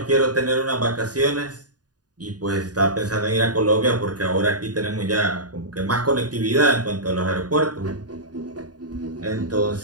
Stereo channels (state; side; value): late; left; 0.69 ms